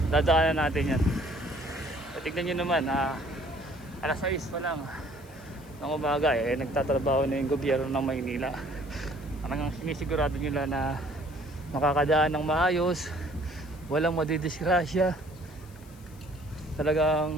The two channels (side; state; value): left; noise; hiss, 25 dB below the sound